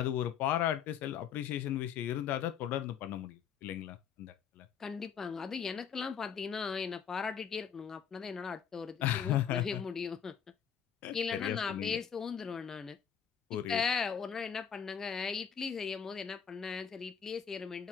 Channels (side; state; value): right; quieter; 7.9 dB